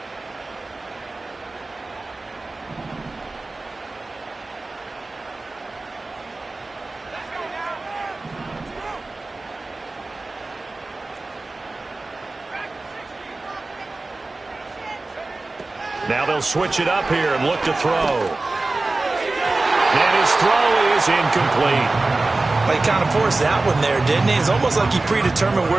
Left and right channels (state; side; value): quieter; left; 3.2 dB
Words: Now they'll switch it up here and look to throw. And his throw is incomplete. Well, he kind of forced that one there, didn't he? It's almost like he predetermined